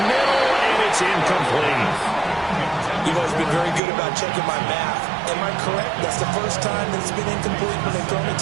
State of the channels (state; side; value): drops out; left; at 3.8 s